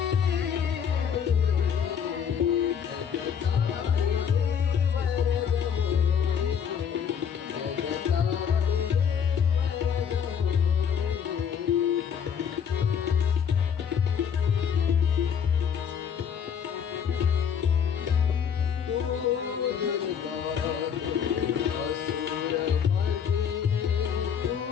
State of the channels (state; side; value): quieter; right; 7.6 dB